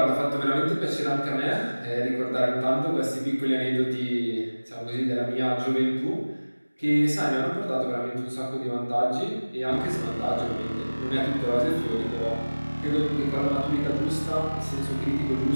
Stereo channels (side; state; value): both; inverted; correlation -1.00